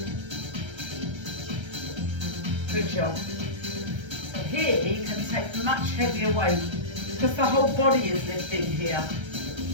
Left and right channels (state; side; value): late; left; 1.3 ms